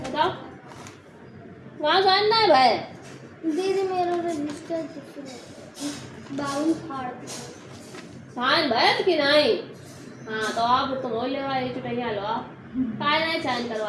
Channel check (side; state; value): both; identical; correlation 1.00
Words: वहाँ साइन ना है भाई। दीदी मेरा रजिस्टर 52 फाड़ साइन भैया कि नहीं? हाँ तो आप तुम हो ले भाई चुटैया लो आप काय नहीं साइन